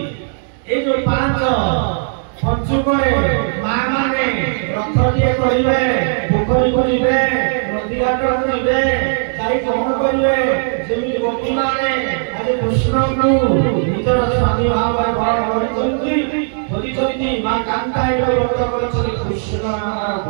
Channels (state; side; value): silent; left; digital silence